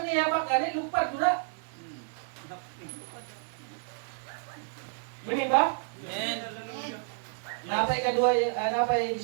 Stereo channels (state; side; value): silent; left; digital silence